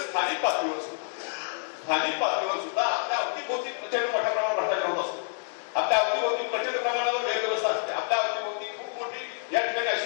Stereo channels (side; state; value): right; silent; digital silence